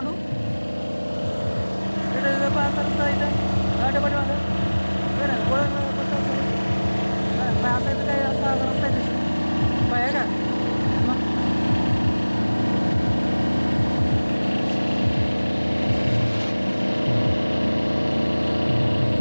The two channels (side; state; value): both; inverted; correlation -1.00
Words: तिथं पाच रस्ता इथं गाडी पाठी माझं असं इथं काही असा रस्ता आहे आहे का.